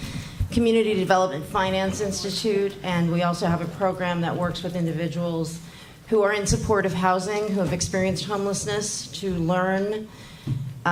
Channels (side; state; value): both; identical; correlation 1.00